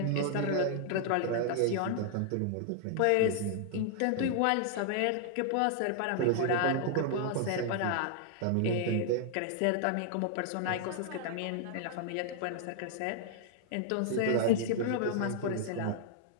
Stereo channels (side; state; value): both; different; correlation -0.01